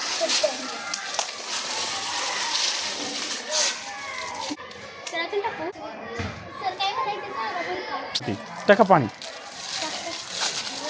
टाकू. सर काय करायचं टाका पाणी.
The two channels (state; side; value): identical; both; correlation 1.00